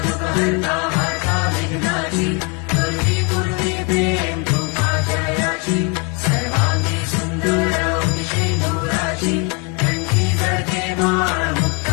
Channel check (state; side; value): quieter; right; 32.8 dB